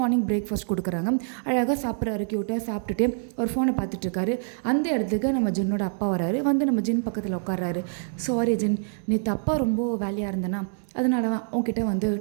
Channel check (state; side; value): silent; left; 61 dB below the other